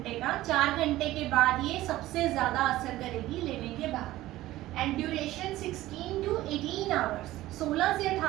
का। 4 घंटे के बाद ये सबसे ज्यादा असर करेगी लेने के बाद। एंड ड्यूरेशन 16 to 18 आवर्स, 16 से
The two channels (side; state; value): left; quieter; 16.1 dB